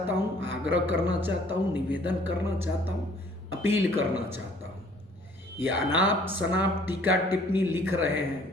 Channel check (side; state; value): both; normal; correlation 0.56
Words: हूँ, आग्रह करना चाहता हूँ, निवेदन करना चाहता हूँ, अपील करना चाहता हूँ। ये अनाप शनाप टीका टिप्पणी लिख रहे हैं